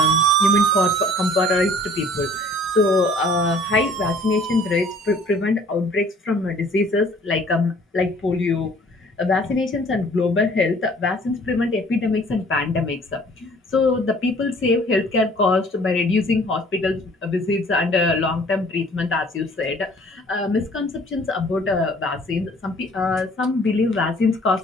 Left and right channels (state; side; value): normal; both; correlation 0.54